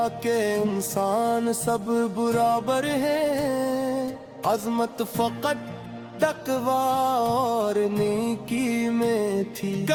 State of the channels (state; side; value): identical; both; correlation 1.00